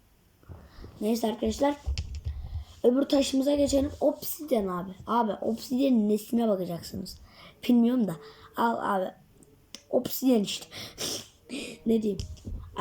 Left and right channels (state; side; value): identical; both; correlation 1.00